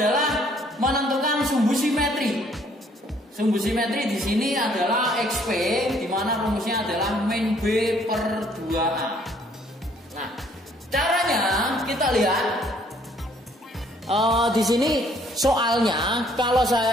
menentukan sumbu simetri. Sumbu simetri di sini adalah XP, di mana rumusnya adalah min B per 2A. Nah, caranya kita lihat di sini soalnya kalau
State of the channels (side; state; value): both; normal; correlation 0.63